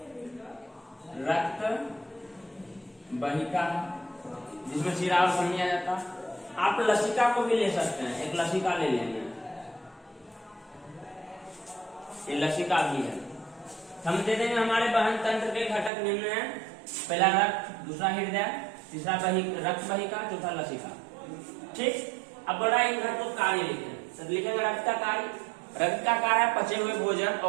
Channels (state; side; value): drops out; left; at 15.9 s